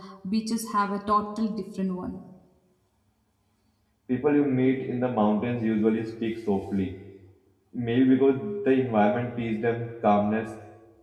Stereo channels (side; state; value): both; identical; correlation 1.00